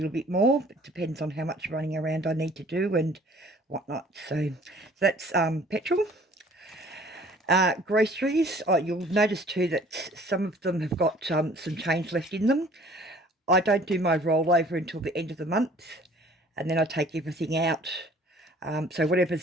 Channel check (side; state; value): both; normal; correlation 0.53